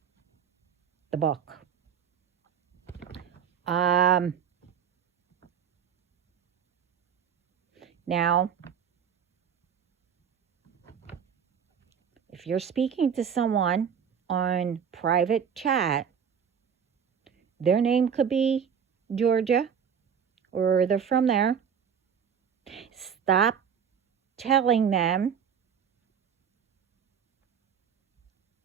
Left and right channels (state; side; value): quieter; left; 7.6 dB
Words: the book. Now, if you're speaking to someone on private chat, their name could be Georgia, or they're from there. Stop telling them